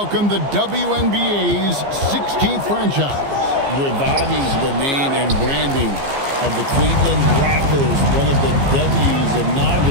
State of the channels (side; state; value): left; late; 15 ms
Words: the WNBA's 16th franchise. Reviving the name and branding of the Cleveland Rockers, one of the W's